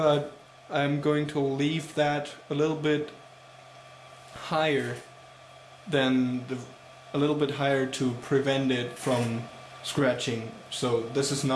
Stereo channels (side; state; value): both; identical; correlation 1.00